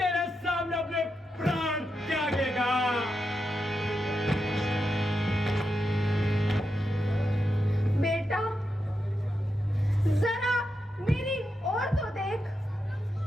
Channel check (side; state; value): both; normal; correlation 0.86